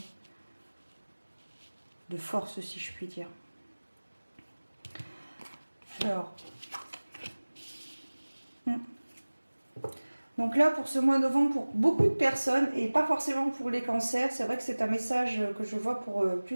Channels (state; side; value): inverted; both; correlation -1.00